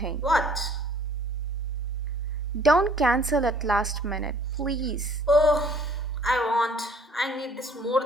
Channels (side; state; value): both; normal; correlation 0.57